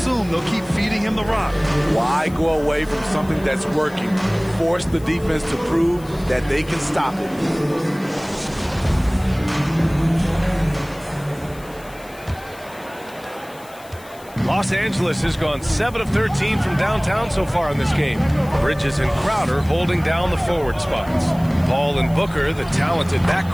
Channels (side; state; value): left; noise; hiss, 22 dB below the sound